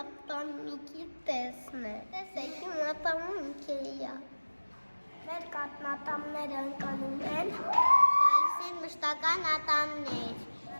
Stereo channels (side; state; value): both; inverted; correlation -1.00